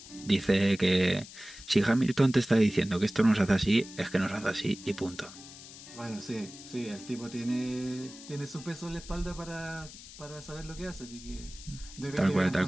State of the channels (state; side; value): noise; left; hiss, 16 dB below the sound